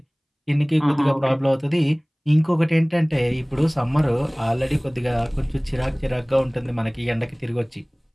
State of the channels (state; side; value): identical; both; correlation 1.00